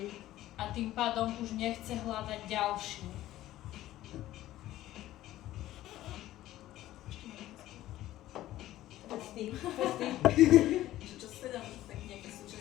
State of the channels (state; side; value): quieter; right; 14.6 dB